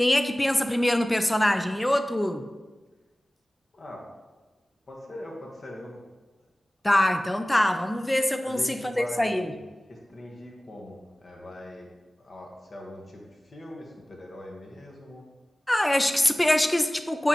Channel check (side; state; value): both; normal; correlation 0.98